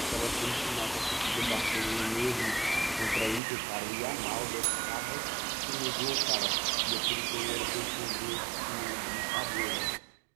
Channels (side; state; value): left; drops out; at 3.4 s